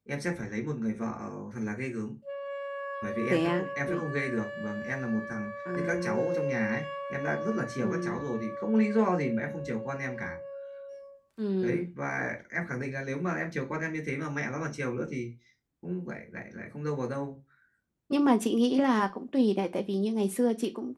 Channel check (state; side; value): identical; both; correlation 1.00